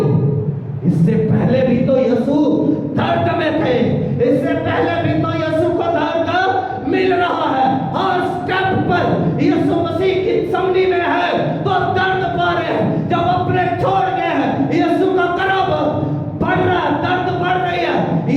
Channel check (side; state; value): both; identical; correlation 1.00